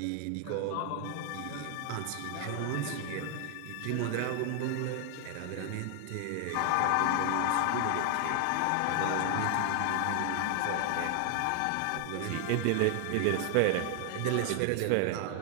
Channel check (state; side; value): different; both; correlation 0.00